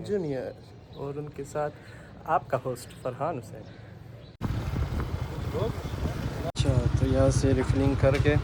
जूनियर और उनके साथ आपका होस्ट फरहान हुसैन। अच्छा, तो यहाँ से रिफिलिंग करके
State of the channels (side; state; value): both; identical; correlation 1.00